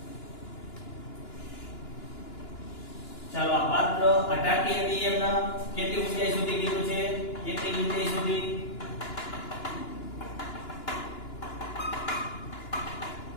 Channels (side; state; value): right; late; 2.9 ms